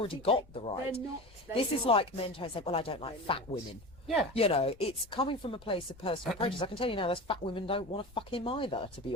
think got they're the right. not. This is like men trying to say, well, I don't like They're fat not. women. Yeah. You know, it's coming from a place of personal prejudice. I can tell you now, those fat women don't want to fuck him either, to be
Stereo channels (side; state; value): left; noise; rumble, 25 dB below the sound